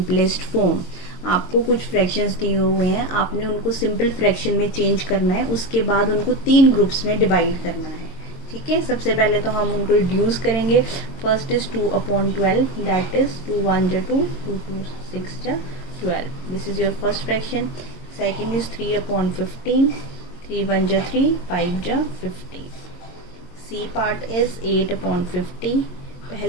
form. आपको कुछ fractions दिए हुए हैं, आपने उनको simple fraction में change करना है, उसके बाद उनको तीन ग्रुप्स में डिवाइड करना है. ठीक है, सबसे पहले तो हम उनको रिड्यूस करेंगे. फर्स्ट इज 2/12, दैट इज 2 1 जा 2, 2 2 6 जा 12. This is your first fraction. Second is 3/15, 3 1 जा 3, 5 जा 15. C part is 8/50.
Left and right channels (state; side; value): late; right; 22 ms